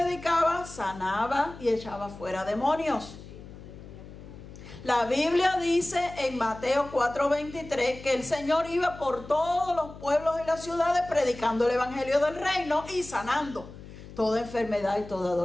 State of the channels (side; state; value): left; noise; hum, 16 dB below the sound